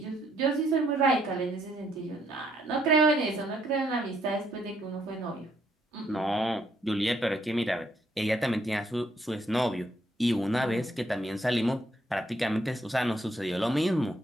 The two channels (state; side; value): normal; both; correlation 0.71